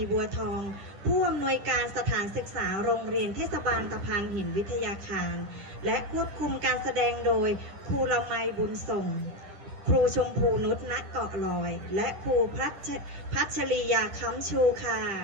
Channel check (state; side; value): late; left; 10 ms